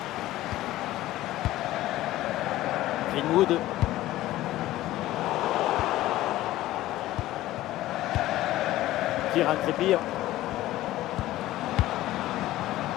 Greenwood. Kieran Trippier.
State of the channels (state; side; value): quieter; right; 15.6 dB